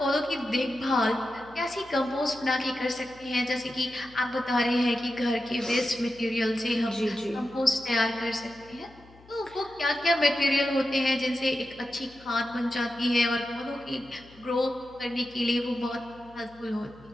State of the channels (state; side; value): noise; left; hum, 25 dB below the sound